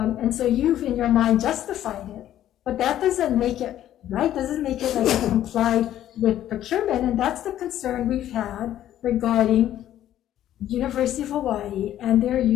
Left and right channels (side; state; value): right; quieter; 12.1 dB